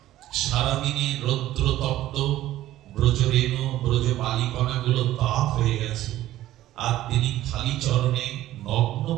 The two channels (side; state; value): left; quieter; 14.4 dB